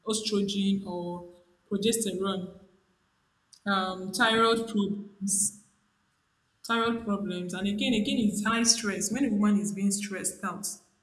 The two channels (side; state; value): both; identical; correlation 1.00